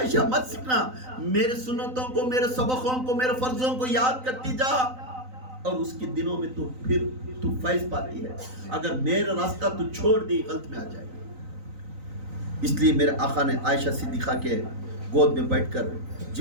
मत सीखना, मेरे सुन्नतों को, मेरे सबकों को, मेरे फर्जों को याद करती जा, और उसके दिनों में तू फिर तू फैज पाती है। अगर मेरा रास्ता तू छोड़ दी गलत में आ जाएगी। इसलिए मेरे आका ने आयशा सिद्दीक़ा के गोद में बैठकर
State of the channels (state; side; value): late; left; 3.9 ms